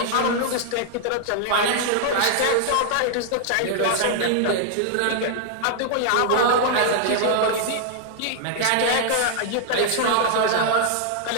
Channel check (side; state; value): both; different; correlation -0.01